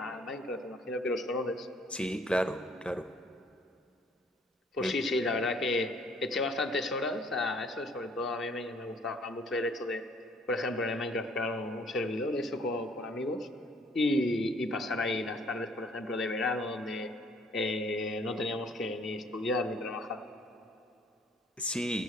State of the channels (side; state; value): both; normal; correlation 0.60